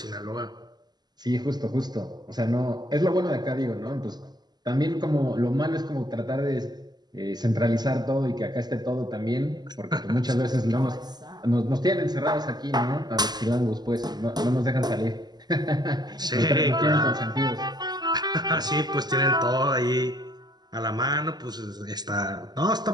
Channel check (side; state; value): left; late; 0.20 ms